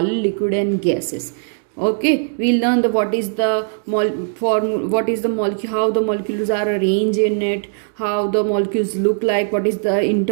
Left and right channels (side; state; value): left; silent; digital silence